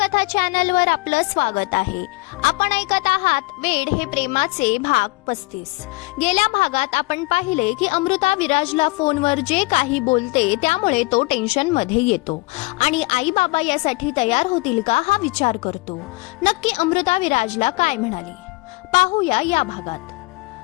चॅनलवर आपलं स्वागत आहे. आपण ऐकत आहात वेड हे प्रेमाचे भाग 35. गेल्या भागात आपण पाहिले की अमृता विराजला फोनवर जे काही बोलते त्यामुळे तो टेन्शन मध्ये येतो आणि आई बाबा यासाठी तयार होतील का हा विचार करतो. नक्की अमृता विराजला काय म्हणाली पाहूया या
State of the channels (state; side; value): quieter; right; 24.6 dB